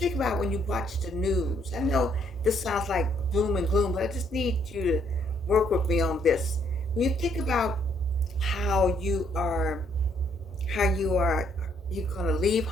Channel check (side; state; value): both; normal; correlation 0.69